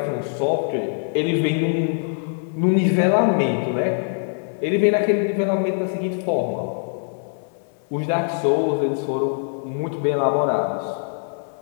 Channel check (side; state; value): right; silent; digital silence